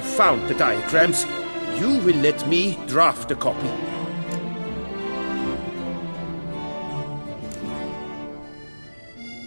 found the diagrams, you will let me draft a copy.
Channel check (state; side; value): inverted; both; correlation -1.00